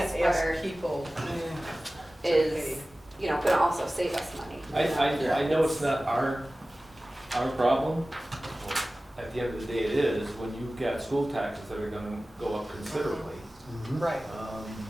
spreader ask people is, you know, gonna also save us money. I know it's not our problem. At the end of the day, it is, when you've got school taxes that are gonna go up considerably. Mhm. Right,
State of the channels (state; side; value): normal; both; correlation 0.97